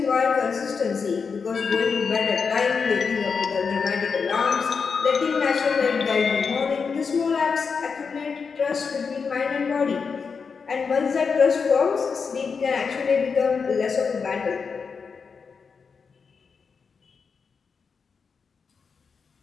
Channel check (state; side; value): quieter; right; 5.5 dB